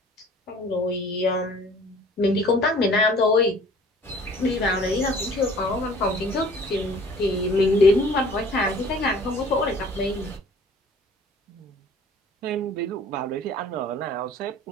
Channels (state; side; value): normal; both; correlation 0.51